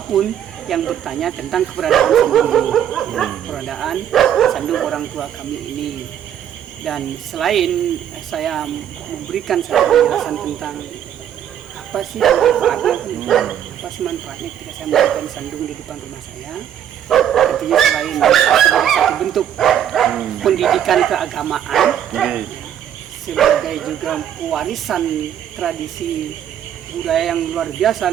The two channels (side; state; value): left; quieter; 10.0 dB